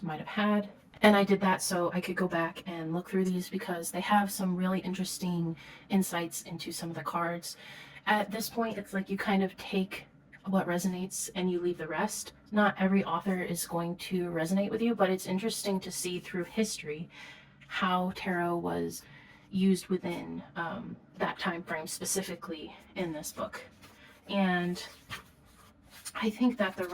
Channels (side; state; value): both; identical; correlation 1.00